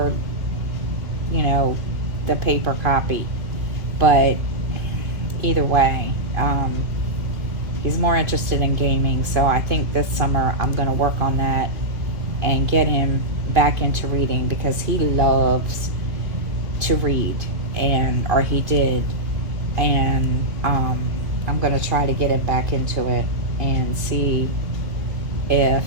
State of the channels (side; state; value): left; late; 2.2 ms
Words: the paper copy. But either way, he's more interested in gaming, so I think this summer I'm going to work on that and get him back into reading because he loves to read, or he did, and I'm going to try to get him back into it and see if